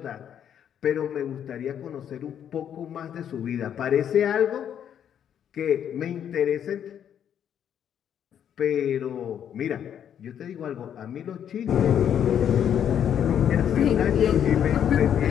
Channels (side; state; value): right; quieter; 9.2 dB